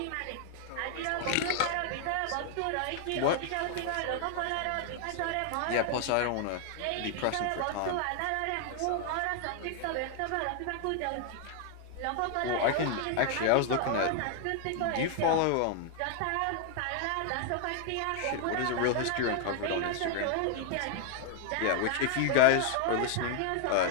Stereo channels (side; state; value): both; different; correlation 0.00